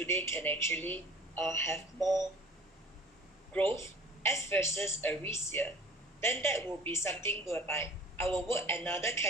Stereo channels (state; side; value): normal; both; correlation 0.47